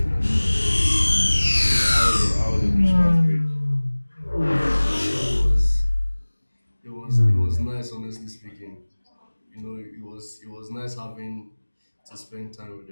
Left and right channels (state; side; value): inverted; both; correlation -1.00